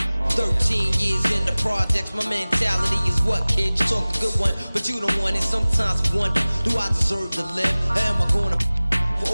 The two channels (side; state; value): both; inverted; correlation -0.99